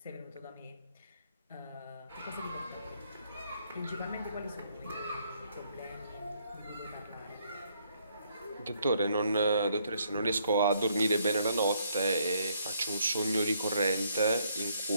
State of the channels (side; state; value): both; inverted; correlation -0.70